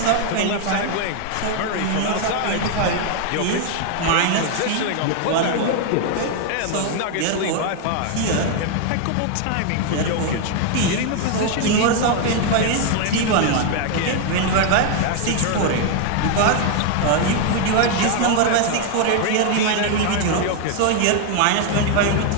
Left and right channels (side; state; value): both; different; correlation 0.00